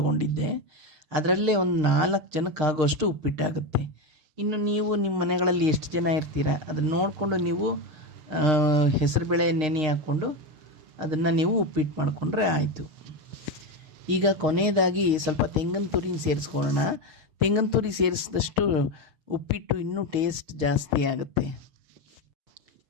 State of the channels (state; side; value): late; left; 6.5 ms